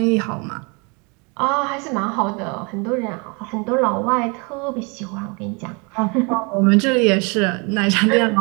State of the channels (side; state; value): left; quieter; 31.5 dB